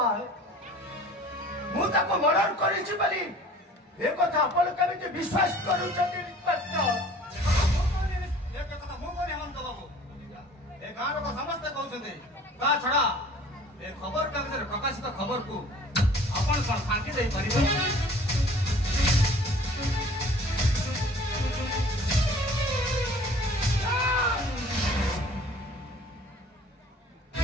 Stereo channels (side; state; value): both; normal; correlation 0.49